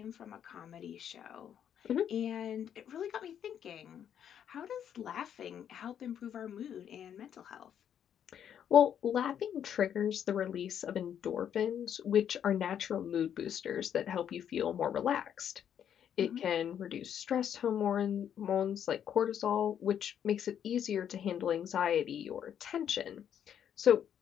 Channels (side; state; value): right; quieter; 9.2 dB